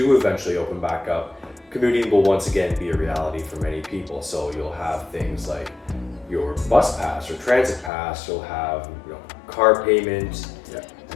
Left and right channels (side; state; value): right; drops out; at 7.9 s